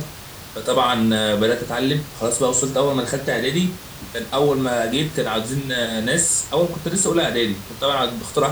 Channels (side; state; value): both; identical; correlation 1.00